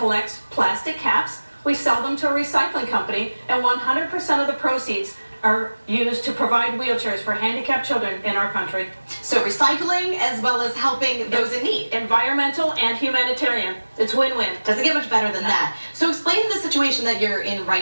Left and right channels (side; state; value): both; inverted; correlation -1.00